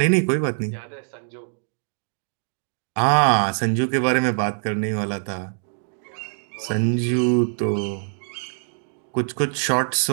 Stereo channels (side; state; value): left; silent; digital silence